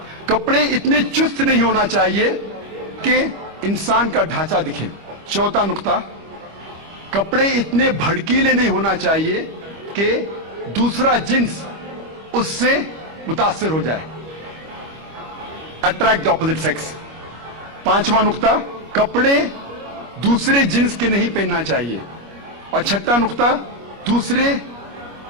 कपड़े इतने चुस्त नहीं होना चाहिए कि इंसान का ढांचा दिखे। चौथा नुक्ता, कपड़े इतने भड़कीले नहीं होना चाहिए कि दूसरा जिन्स उससे मुतासिर हो जाए, अट्रैक्ट द ऑपोजिट सेक्स। पांचवा नुक्ता, कपड़े दूसरे जिन्स के नहीं पहनना चाहिए। और छठा नुक्ता, दूसरे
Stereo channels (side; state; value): left; late; 25 ms